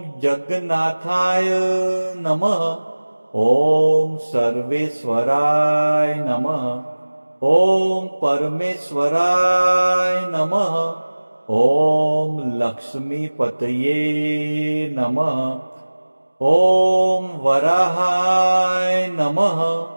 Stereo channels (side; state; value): both; inverted; correlation -1.00